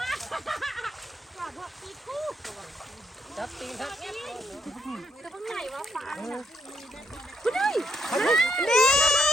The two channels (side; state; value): both; normal; correlation 0.74